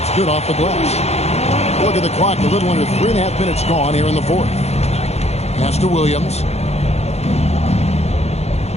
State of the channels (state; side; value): late; right; 0.31 ms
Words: good off the glass. Look at the clock, a little under 3.5 minutes gone here in the fourth. Pass to Williams.